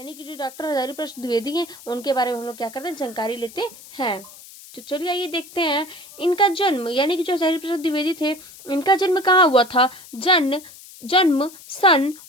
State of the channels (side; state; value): left; noise; hiss, 19 dB below the sound